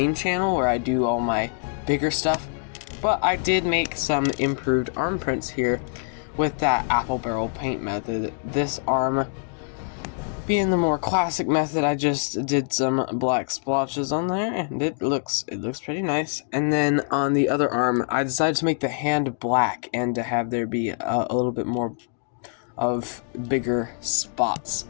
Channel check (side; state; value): right; silent; 62 dB below the other